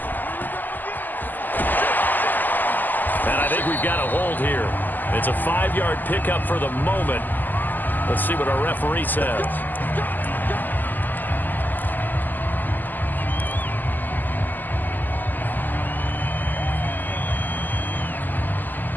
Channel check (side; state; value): right; late; 0.087 ms